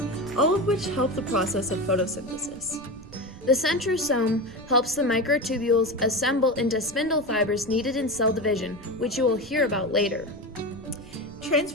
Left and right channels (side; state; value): right; noise; rumble, 19 dB below the sound